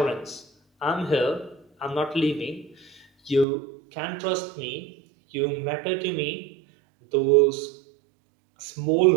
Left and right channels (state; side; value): drops out; left; at 3.5 s